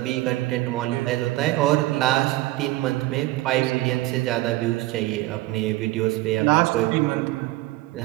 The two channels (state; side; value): quieter; left; 18.4 dB